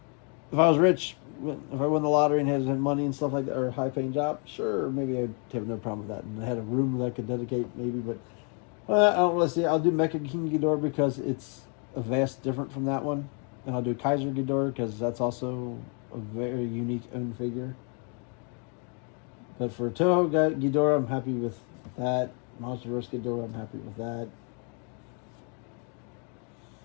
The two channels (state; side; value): quieter; right; 39.0 dB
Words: If I was rich, if I won the lottery and had money and stuff like that, or a high-paying job, sure, maybe I'd have no problem with that. And I had a room that I could dedicate, maybe, but I don't really see it. I'll do Mecha King Ghidorah because it's a vast different from that one. And I'll do Kaiser Ghidorah because that's also a very unique own figure. But for Toho Ghidorah, I'm happy with that. MonsterVerse Ghidorah, I'm happy with that.